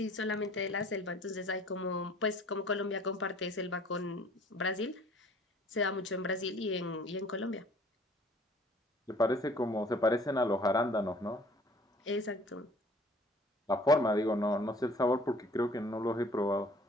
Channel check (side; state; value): both; normal; correlation 0.53